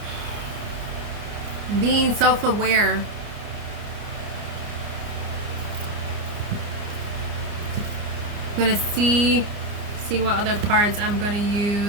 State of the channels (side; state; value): left; late; 29 ms